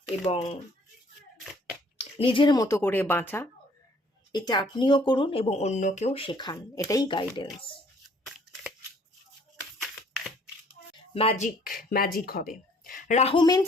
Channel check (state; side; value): normal; both; correlation 0.60